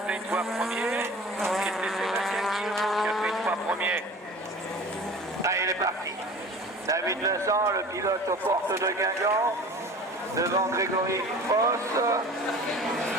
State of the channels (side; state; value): both; normal; correlation 0.41